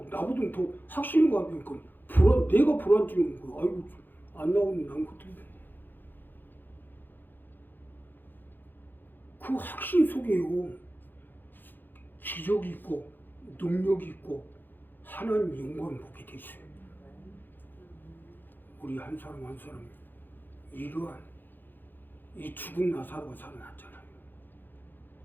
나보다 더 확신을 가지니까 내가 불안증인 거야. 아이고 안 나오면 난 그때 그 확신 속에요. 기적이 있고 능력이 있고 하나님 영광을 보게 돼 있어요. 우리 한 사람 한 사람이 이러한 이 죽은 나사로가 살아났잖아요.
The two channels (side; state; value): right; late; 0.091 ms